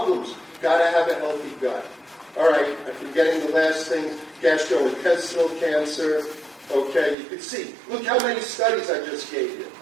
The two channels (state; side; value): drops out; left; at 7.2 s